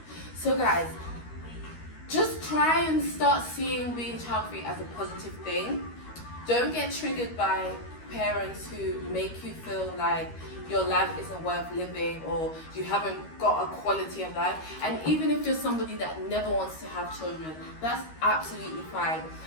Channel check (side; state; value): right; late; 13 ms